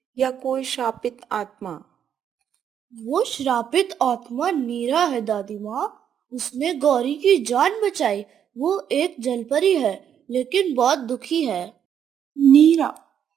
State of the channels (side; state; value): left; quieter; 8.9 dB